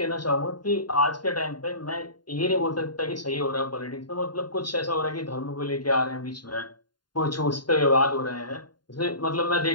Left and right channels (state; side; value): late; right; 0.71 ms